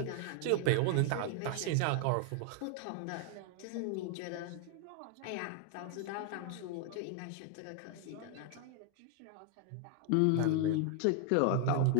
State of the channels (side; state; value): both; different; correlation 0.00